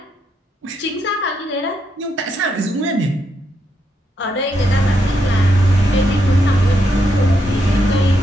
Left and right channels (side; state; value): both; normal; correlation 0.80